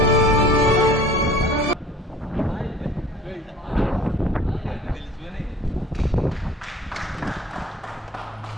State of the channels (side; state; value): both; normal; correlation 0.47